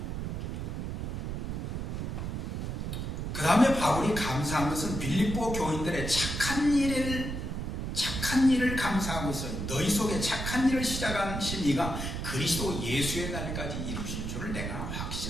그 다음에 바울이 감사한 것은 빌립보 교인들의 착한 일을 감사하고 있어요. 너희 속에 착한 일을 시작하신 이가 그리스도 예수의 날까지 이루실 줄을 내가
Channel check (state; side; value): noise; right; rumble, 4 dB below the sound